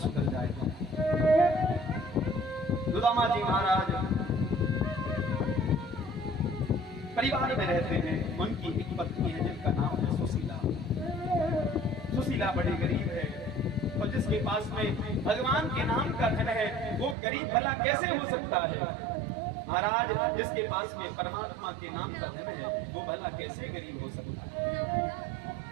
जाएगा। सुदामा जी महाराज परिवार में रहते हैं। उनकी एक पत्नी है जिनका नाम है सुशीला। सुशीला बड़ी गरीब है, और जिसके पास में भगवान के नाम का धन है वो गरीब भला कैसे हो सकता है? महाराज, जिसके पास में परमात्मा के नाम का धन है वो भला कैसे गरीब हो सकता है?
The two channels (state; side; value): drops out; left; at 17.2 s